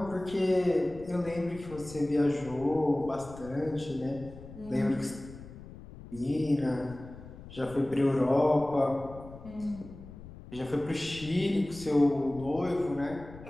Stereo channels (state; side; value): noise; left; rumble, 16 dB below the sound